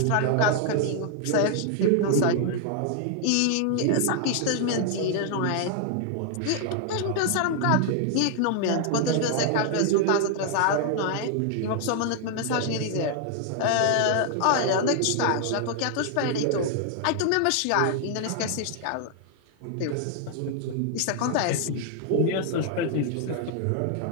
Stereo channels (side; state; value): both; different; correlation 0.00